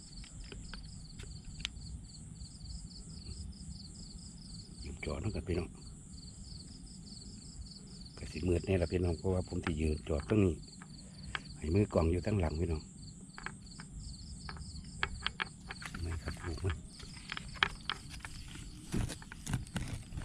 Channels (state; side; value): identical; both; correlation 1.00